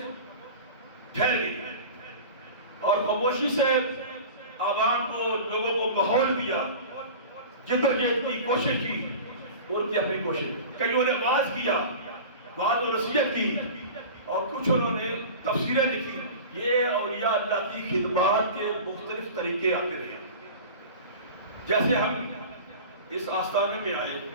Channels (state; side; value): inverted; both; correlation -0.35